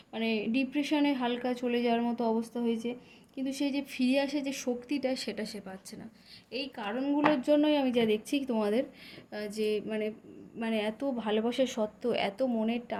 মানে ডিপ্রেশনে হালকা চলে যাওয়ার মতো অবস্থা হয়েছে, কিন্তু সেই যে ফিরে আসে যে শক্তিটা সেটা সে পাচ্ছে না। এই কারণগুলোর জন্যই আমি যা দেখছি তোমাদের যে মানে মানে এত ভালোবাসা সত্ত্বেও, এত মনের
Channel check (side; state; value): both; identical; correlation 1.00